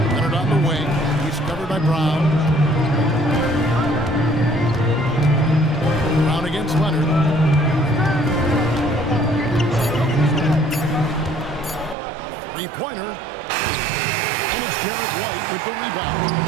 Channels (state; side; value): drops out; left; at 12.0 s